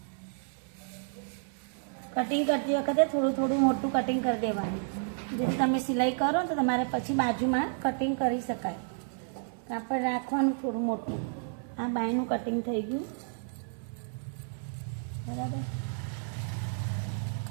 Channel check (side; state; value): left; silent; 57 dB below the other